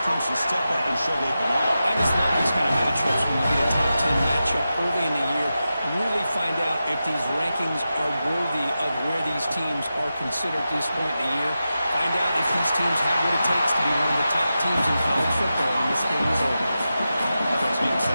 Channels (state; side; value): inverted; both; correlation -0.91